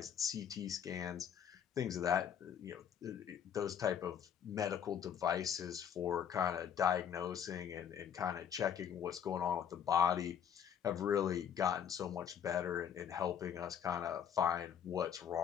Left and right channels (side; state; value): right; quieter; 8.6 dB